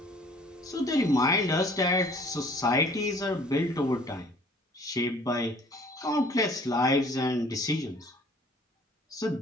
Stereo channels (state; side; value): normal; both; correlation 0.53